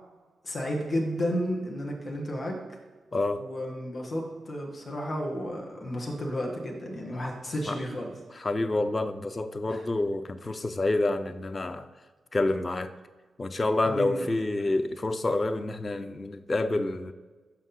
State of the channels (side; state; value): both; normal; correlation 0.94